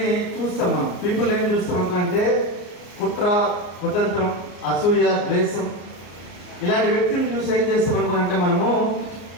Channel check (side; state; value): right; late; 34 ms